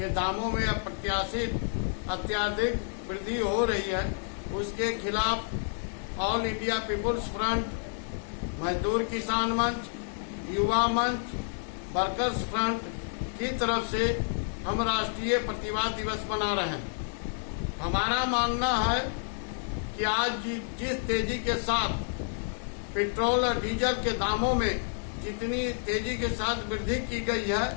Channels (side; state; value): right; silent; 58 dB below the other